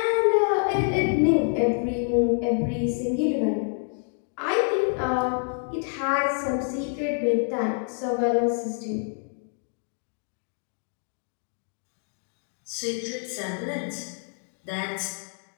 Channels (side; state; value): right; silent; 55 dB below the other